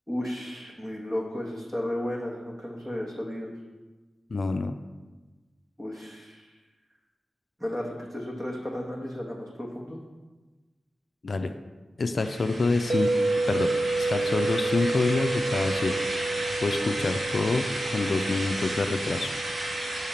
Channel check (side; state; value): both; normal; correlation 0.92